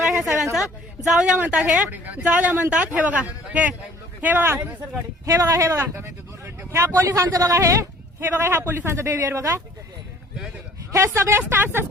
ह्या सगळ्यांचा. जाऊ द्या म्हणतात हे, जाऊ द्या म्हणतात. हे बघा हे बघा हे बघा हे बघा ह्या पोलिसांचं बघा हे बघा ह्या पोलिसांचं बिहेवियर बघा. हे सगळे स्टाफ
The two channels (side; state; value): both; normal; correlation 0.53